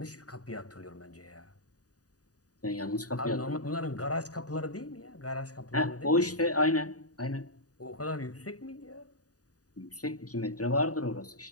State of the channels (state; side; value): late; right; 0.67 ms